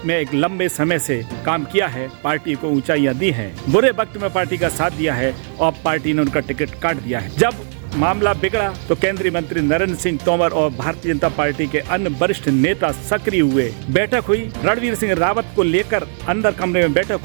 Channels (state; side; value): silent; left; digital silence